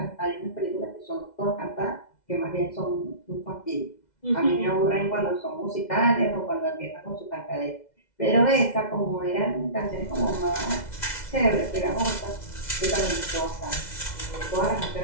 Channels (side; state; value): right; late; 2.0 ms